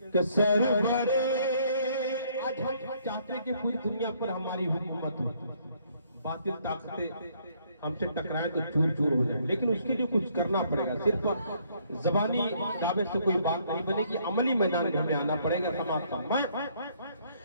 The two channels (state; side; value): inverted; both; correlation -0.66